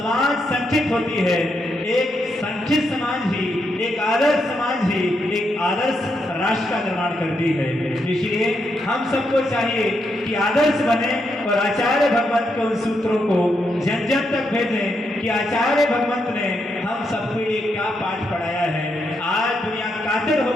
संगठित होती है। एक संगठित समाज ही, एक आदर्श समाज ही एक आदर्श राष्ट्र का निर्माण करती है। इसलिए हम सबको चाहिए कि आदर्श बने और आचार्य भगवंत के उन सूत्रों को जन जन तक भेजें कि आचार्य भगवंत ने हम सबको ये क्या पाठ पढ़ाया है। आज दुनिया कातिल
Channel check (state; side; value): normal; both; correlation 0.81